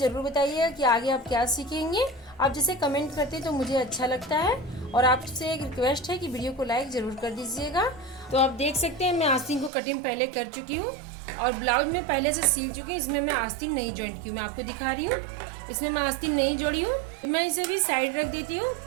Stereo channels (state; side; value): drops out; left; at 9.7 s